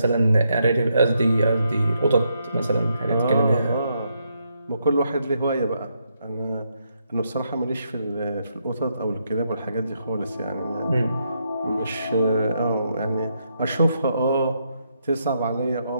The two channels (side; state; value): both; inverted; correlation -0.78